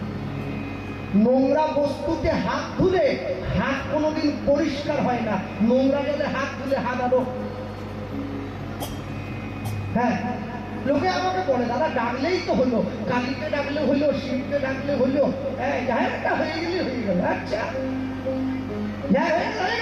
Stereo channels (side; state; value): both; identical; correlation 1.00